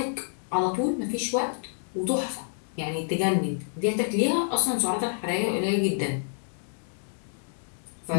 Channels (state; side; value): silent; right; 59 dB below the other